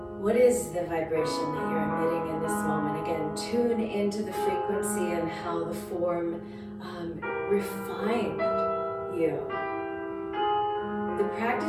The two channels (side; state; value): both; identical; correlation 1.00